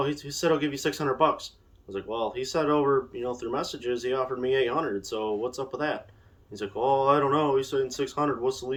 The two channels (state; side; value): identical; both; correlation 1.00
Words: he said he'll give you $600." I was like, "Well, he said over through messages he offered me $800. So what's up with that?" He's like, "Oh, I don't know. He's saying $600. What's the